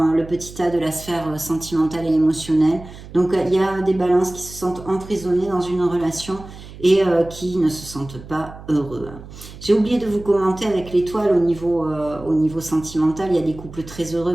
le petit tas de la sphère sentimentale et émotionnelle. Donc il y a des balances qui se sentent emprisonnées dans une relation et qui ne se sentent pas heureux. J'ai oublié de vous commenter avec l'étoile au niveau sentimental. Il y a des couples très heureux,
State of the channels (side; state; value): right; noise; hum, 16 dB below the sound